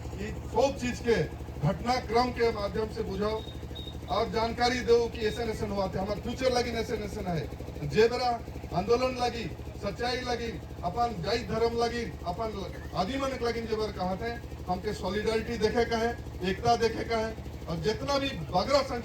सब चीज के घटनाक्रम के माध्यम से बुझाओ और जानकारी दो कि ऐसा ऐसा हुआ थे हमारे फ्यूचर लगी ऐसे ऐसा है जे बरा आंदोलन लगी सच्चाई लगी अपन जाई धर्म लगी अपन आदि मन लगी जबर कहा थे हमके सॉलिडारिटी देखे का है एकता देखे का है और जितना भी बगरा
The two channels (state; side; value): identical; both; correlation 1.00